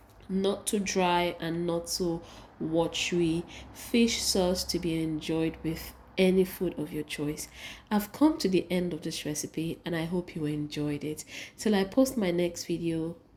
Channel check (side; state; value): both; identical; correlation 1.00